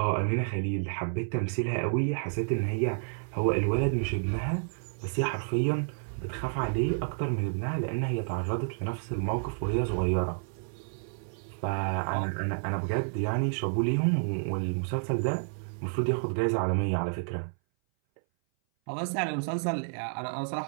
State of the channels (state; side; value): silent; left; 57 dB below the other